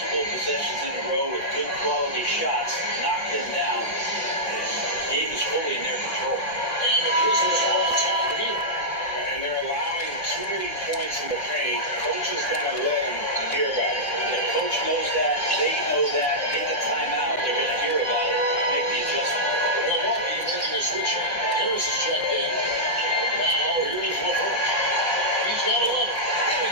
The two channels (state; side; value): late; right; 5.4 ms